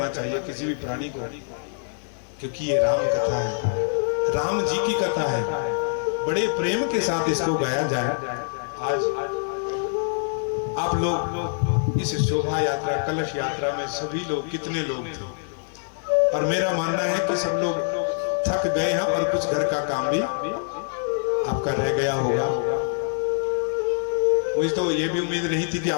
चाहिए किसी भी प्राणी को, क्योंकि ये राम कथा है, राम जी की कथा है। बड़े प्रेम के साथ इसको गाया जाए। आज आप लोग इस शोभा यात्रा कलश यात्रा में सभी लोग कितने लोग थे, और मेरा मानना है कि सब लोग थक गए हैं और कुछ घर का काम भी आपका रह गया होगा। मुझे तो ये भी उम्मीद नहीं थी कि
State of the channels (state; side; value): silent; right; digital silence